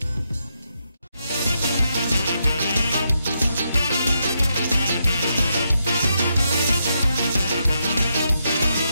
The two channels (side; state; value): both; inverted; correlation -0.81